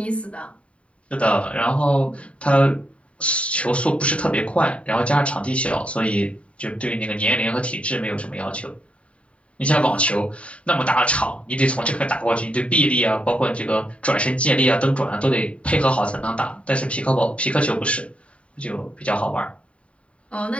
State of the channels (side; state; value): right; late; 0.063 ms